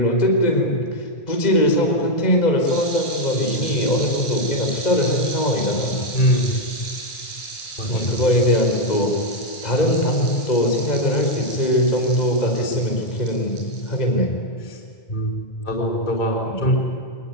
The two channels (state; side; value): late; right; 2.0 ms